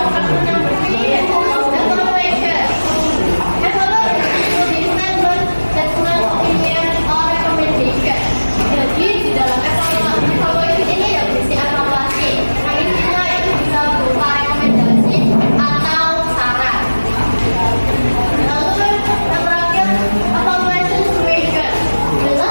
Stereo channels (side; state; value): both; inverted; correlation -1.00